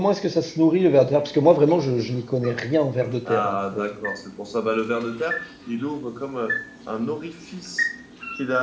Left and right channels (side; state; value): both; identical; correlation 1.00